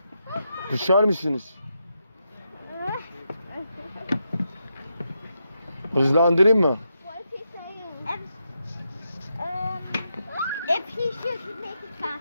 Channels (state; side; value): inverted; both; correlation -0.84